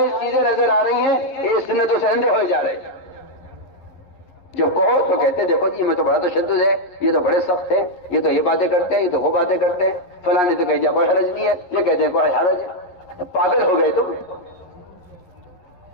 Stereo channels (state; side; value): late; right; 11 ms